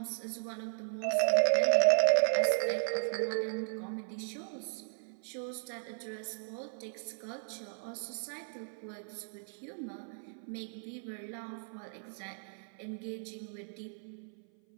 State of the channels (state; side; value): silent; left; 54 dB below the other